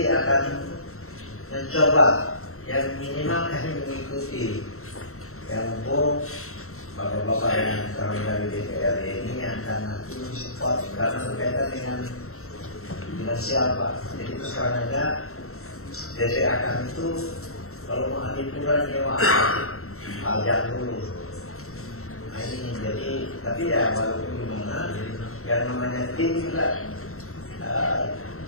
akan mencoba yang minimal kami mengikuti, yang mumpung bapak-bapak yang kami dari DPR ini akan nanti support, karena berkaitan dengan finansial, Pak. Jadi itu sekarang aja DPA kami itu kalau mau Adipura nyewa pajak dulu. Nah, ini jadi, tapi ya walaupun gimana, yang namanya tim juga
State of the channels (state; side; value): late; right; 0.63 ms